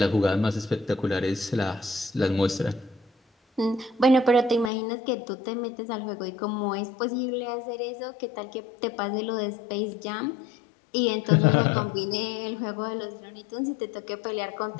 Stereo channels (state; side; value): drops out; right; at 4.7 s